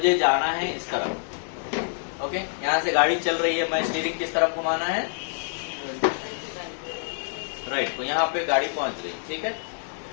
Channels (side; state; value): right; silent; digital silence